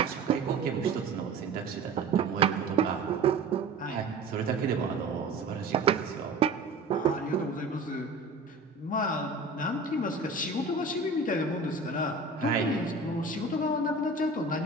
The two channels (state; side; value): quieter; left; 3.5 dB